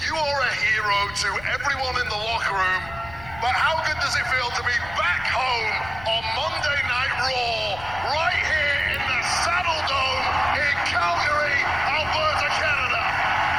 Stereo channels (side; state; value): left; noise; rumble, 17 dB below the sound